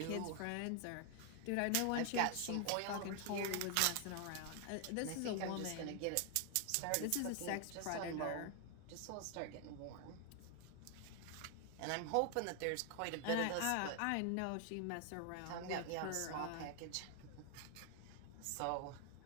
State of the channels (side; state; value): both; different; correlation 0.00